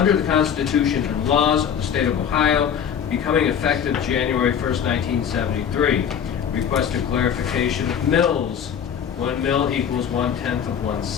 the Constitution and laws of the state of Ohio, becoming effective January 1st, 1973. Requested clarification of mills. 1 mill equals 1/10 of 1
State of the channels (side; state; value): right; quieter; 8.2 dB